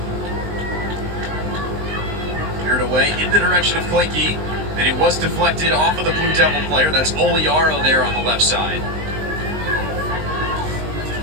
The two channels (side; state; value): left; late; 19 ms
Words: Cleared away in the direction of Klinke. And it was deflected off of the Blue Devil player. That's Oliaro there on the left side.